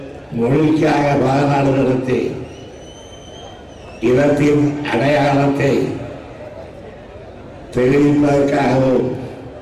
மொழிக்காக மாநாடு நடத்தி இனத்தின் அடையாளத்தை தெரிவிப்பதற்காகவும்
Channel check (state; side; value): identical; both; correlation 1.00